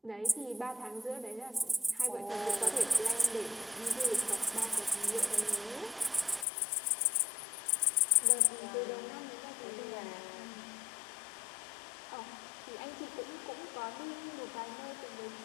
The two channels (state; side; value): drops out; right; at 6.5 s